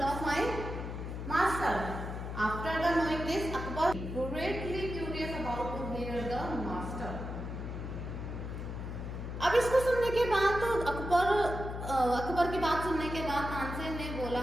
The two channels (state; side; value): noise; left; hum, 6 dB below the sound